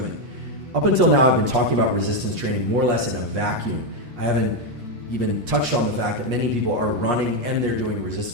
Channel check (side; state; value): left; late; 8.3 ms